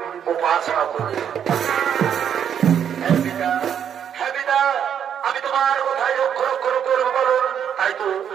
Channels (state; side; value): quieter; left; 8.7 dB